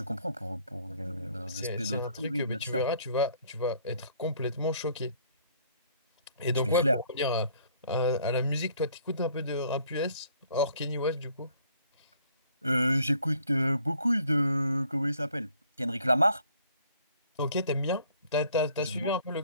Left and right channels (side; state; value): both; inverted; correlation -0.60